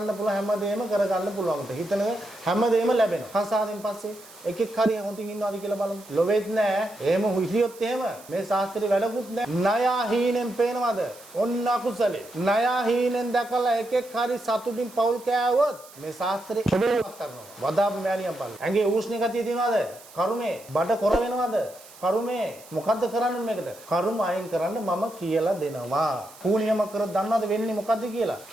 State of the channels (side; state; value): right; noise; hiss, 21 dB below the sound